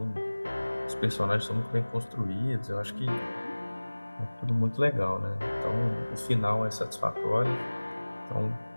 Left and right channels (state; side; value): inverted; both; correlation -1.00